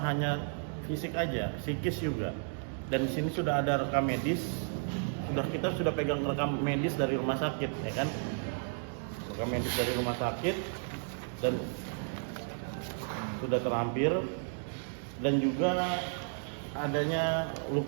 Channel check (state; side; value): silent; left; digital silence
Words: hanya fisik aja, psikis juga. Dan di sini sudah ada rekam medis, kita sudah pegang rekam medis dari rumah sakit, ya kan? Rekam medis dari rumah sakit dan sudah terlampir, dan juga adanya